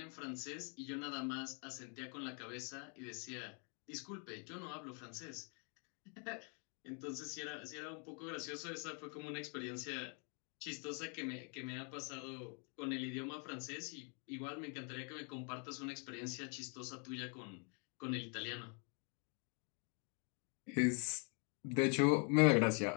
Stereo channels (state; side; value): quieter; right; 38.3 dB